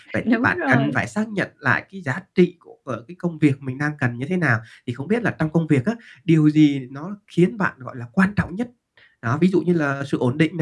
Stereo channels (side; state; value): both; identical; correlation 1.00